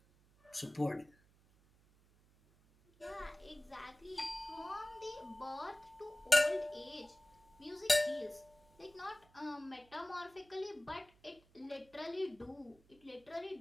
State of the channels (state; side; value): noise; right; hum, 29 dB below the sound